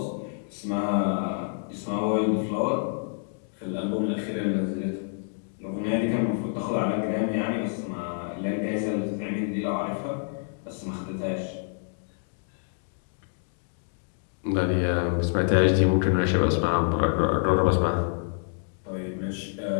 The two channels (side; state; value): right; silent; 60 dB below the other